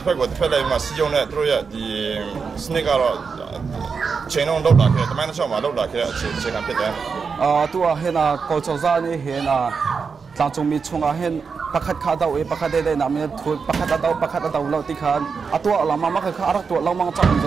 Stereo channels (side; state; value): left; quieter; 5.4 dB